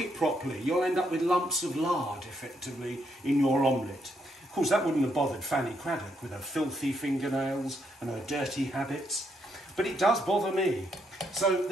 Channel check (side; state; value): both; normal; correlation 0.76